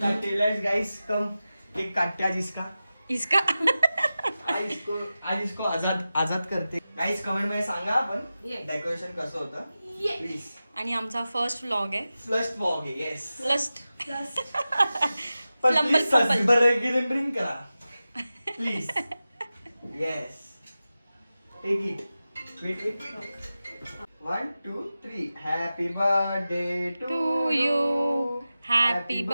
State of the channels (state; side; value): inverted; both; correlation -0.94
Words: काटते. लेट्स गाइस कम, केक काटते आज इसका. इसका आज इसको आजाद करते. गाइस कमेंट मध्ये सांगा आपण डेकोरेशन कसं होतं प्लीज. आणि आमचा फर्स्ट व्लॉग आहे. फ्लस्ट वॉक आहे. येस फ्लस्ट पण फ्लंबल प्लीज फंबल. बरं ड्रिंक करा please. Yes take it. Wait 1 2 3. Happy birthday to you. Happy